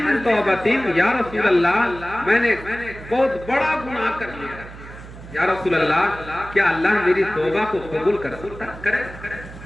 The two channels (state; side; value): noise; right; hum, 15 dB below the sound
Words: من توبۃ، یا رسول اللہ میں نے بہت بڑا گناہ کر لیا، یا رسول اللہ کیا اللہ میری توبہ کو قبول کر سکتا کرے؟